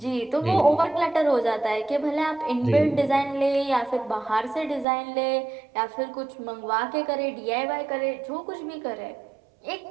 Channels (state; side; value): drops out; left; at 4.9 s